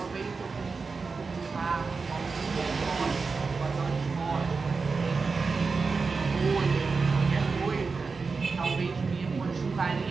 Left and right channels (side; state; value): left; quieter; 4.5 dB